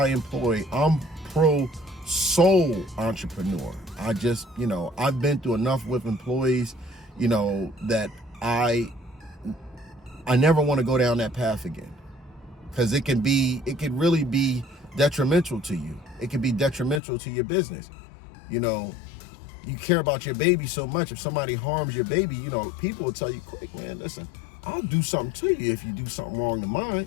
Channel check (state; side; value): drops out; right; at 17.0 s